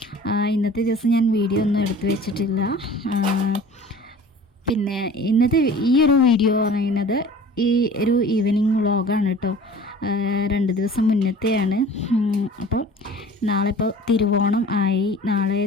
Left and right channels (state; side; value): normal; both; correlation 0.44